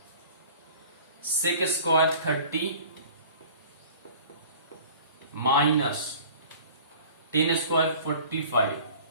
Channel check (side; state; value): both; inverted; correlation -0.46